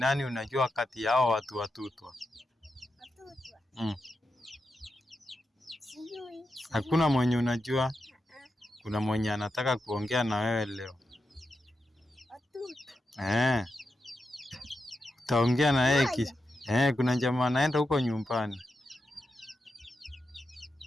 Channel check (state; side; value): normal; both; correlation 0.88